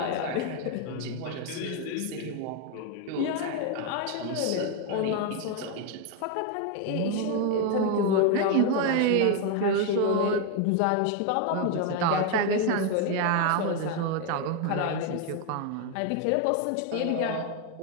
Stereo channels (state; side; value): different; both; correlation 0.01